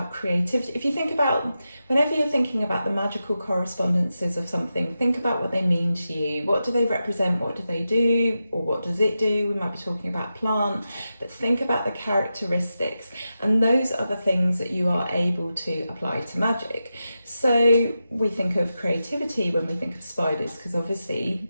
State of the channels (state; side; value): inverted; both; correlation -0.90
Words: creativity. If you think about, whenever you're thinking about the magical correspondences of something, think about what they mean to you. What do they represent? What do they do? Or what does it do? We might be talking about plant, but think about the characteristics. And those are the things that you are able to apply to magic. So we think of creativity when we think of spiders, because obviously